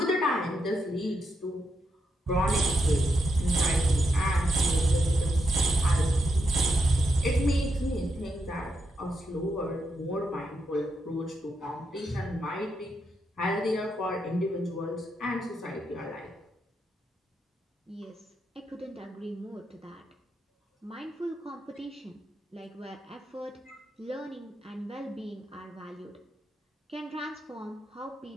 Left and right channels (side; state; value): both; normal; correlation 0.83